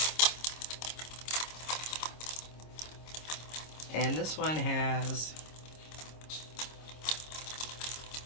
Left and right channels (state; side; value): late; right; 26 ms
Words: And this one has